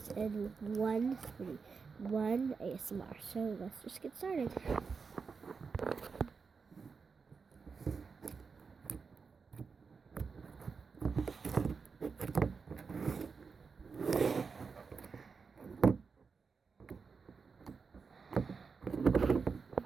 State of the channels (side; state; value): left; quieter; 5.2 dB